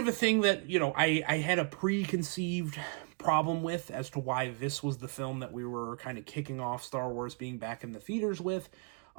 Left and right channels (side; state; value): left; quieter; 35.9 dB